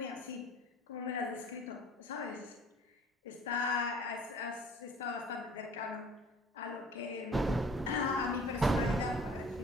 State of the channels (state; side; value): normal; both; correlation 0.50